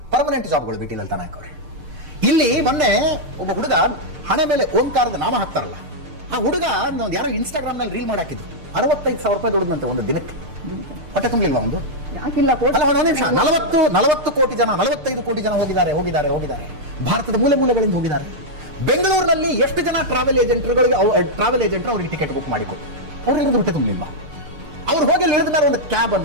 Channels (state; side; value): late; left; 6.6 ms